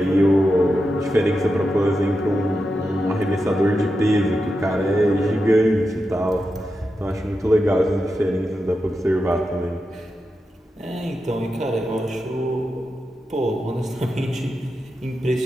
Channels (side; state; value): both; normal; correlation 0.89